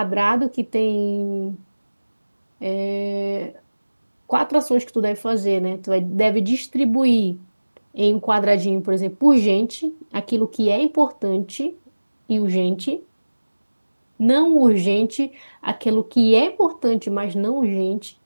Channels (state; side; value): inverted; both; correlation -1.00